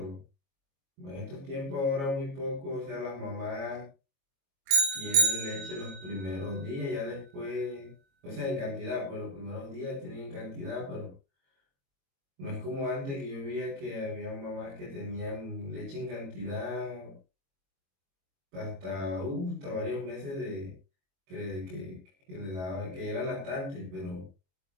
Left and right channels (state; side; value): late; left; 22 ms